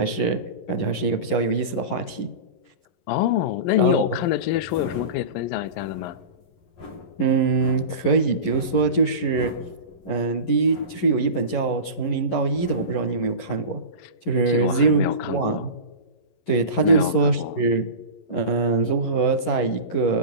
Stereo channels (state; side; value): late; right; 11 ms